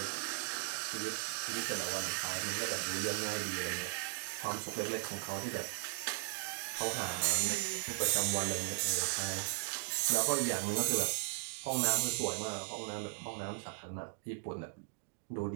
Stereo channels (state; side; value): silent; left; digital silence